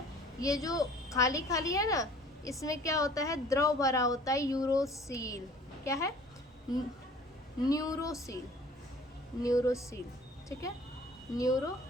ये जो खाली खाली है ना, इसमें क्या होता है, द्रव भरा होता है, यूरोसील। क्या है? न्यूरोसील, ठीक है,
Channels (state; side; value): normal; both; correlation 0.50